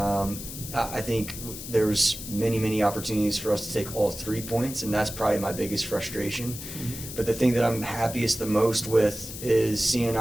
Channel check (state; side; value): noise; left; hiss, 10 dB below the sound